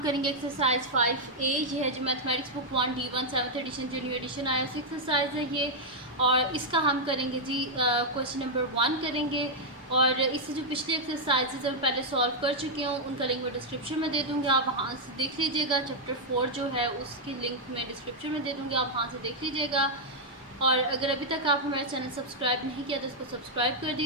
करेंगे एक्सरसाइज 5A। ये है जो mathematics book 1 D1 7th edition जो न्यू एडिशन आया उस एक्सरसाइज है ये। और इसका हम करेंगे जी क्वेश्चन नंबर 1 करेंगे। और इससे जो पिछली एक्सरसाइजेज हम पहले सॉल्व कर चुके हूँ उनका लिंक मैं डिस्क्रिप्शन में दे दूँगी, आप वहाँ से देख लीजिएगा। चैप्टर 4 जो है उसकी लिंक मैं डिस्क्रिप्शन में दे दूँगी, आप वहाँ से देख लीजिएगा। और अगर अभी तक आप हमारा चैनल सब्सक्राइब नहीं किया तो उसको सब्सक्राइब कर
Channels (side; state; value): both; normal; correlation -0.03